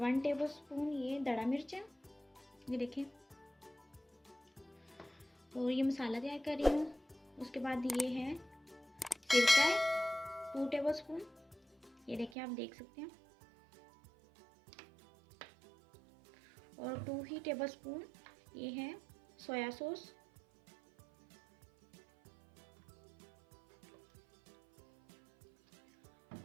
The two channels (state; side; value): drops out; left; at 12.4 s